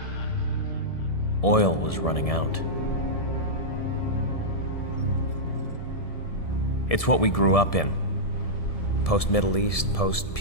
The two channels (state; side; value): late; right; 1.7 ms